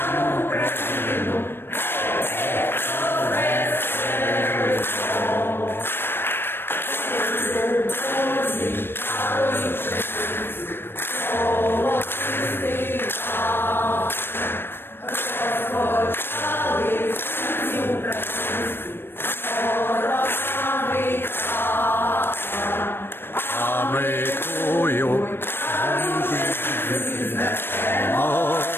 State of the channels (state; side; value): late; right; 0.10 ms